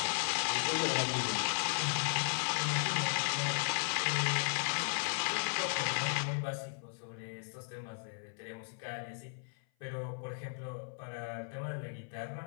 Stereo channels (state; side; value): silent; right; 54 dB below the other